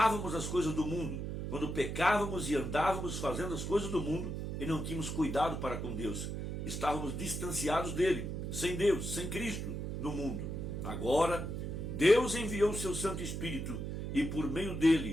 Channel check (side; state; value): right; noise; hum, 4 dB below the sound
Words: as coisas do mundo, quando pecávamos e andávamos fazendo as coisas do mundo e não tínhamos cuidado para com Deus, estávamos distanciados dele, sem Deus, sem Cristo no mundo. Agora, Deus enviou o seu Santo Espírito e por meio